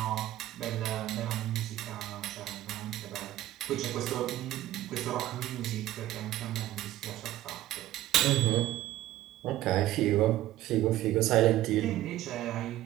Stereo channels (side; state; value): left; quieter; 14.7 dB